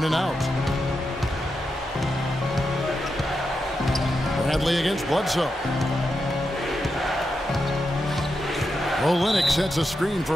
and out. Bradley against Bledsoe. Olynyk sets a screen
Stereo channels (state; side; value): normal; both; correlation 0.86